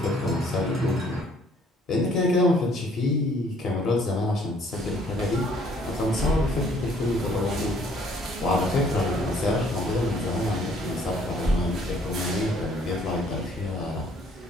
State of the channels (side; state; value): both; normal; correlation 0.61